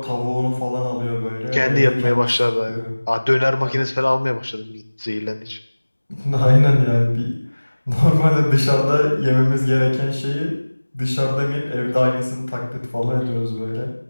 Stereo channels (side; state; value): both; inverted; correlation -1.00